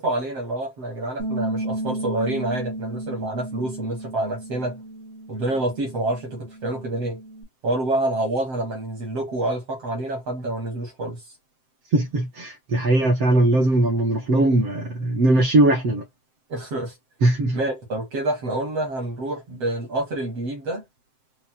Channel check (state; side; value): late; left; 7.7 ms